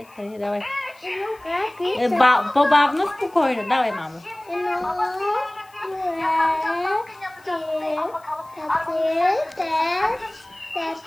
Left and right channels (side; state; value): left; noise; hiss, 29 dB below the sound